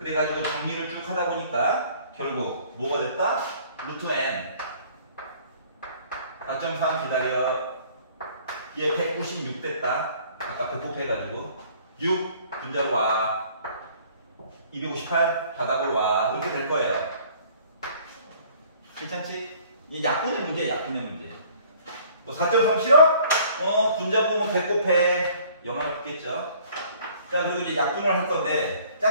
정리를 쭉 하다 보니까 결국 뭐가 됐다? 루트 n. 4.3 기다려. 얘 196 됐다. 아까 100 곱해가지고 6 분자로 와. 258 바닥으로 와. 이렇게 될 거예요. 괜찮지? 이 약분의 문제야, 약분의 문제. 뭐 4.3 싫어? 분자 보면 100 곱해. 영향을 받겠죠. 자, 그리고 이제 약분을 할 건데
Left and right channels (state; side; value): inverted; both; correlation -0.55